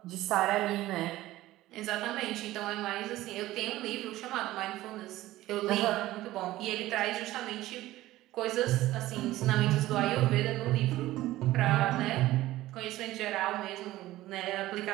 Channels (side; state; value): left; quieter; 16.2 dB